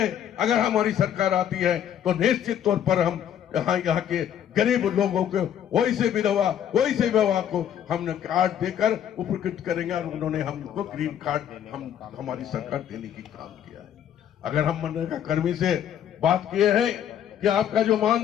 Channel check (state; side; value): quieter; right; 9.8 dB